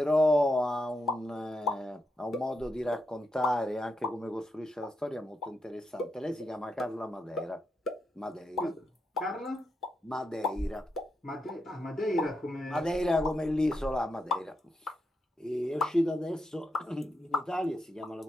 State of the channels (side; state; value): both; normal; correlation 0.84